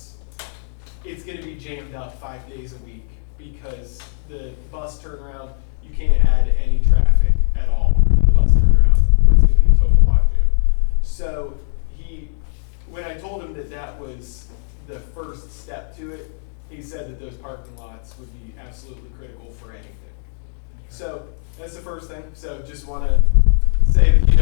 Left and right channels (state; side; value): silent; right; digital silence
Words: it's gonna be jammed up 5 days a week because the bus turnaround, you can't add any traffic at all to the bus turnaround or it's gonna be a total logjam. So when I told him that that was the first step to it, he said that those parking lots would be absolutely critical for anything. So that's the first thing. So just want to say